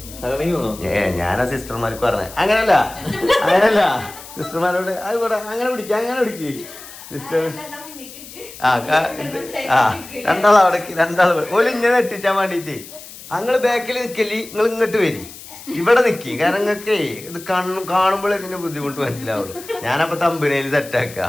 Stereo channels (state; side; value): noise; left; hiss, 16 dB below the sound